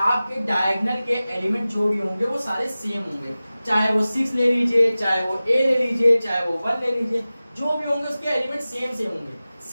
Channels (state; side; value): inverted; both; correlation -0.96